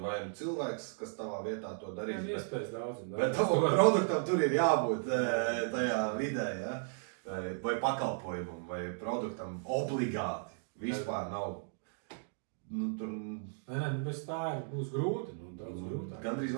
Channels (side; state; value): left; silent; digital silence